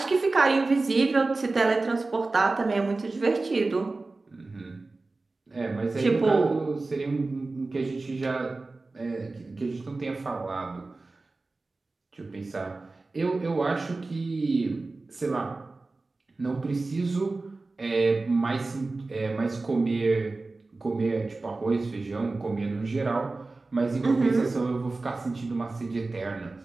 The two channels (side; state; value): left; quieter; 3.4 dB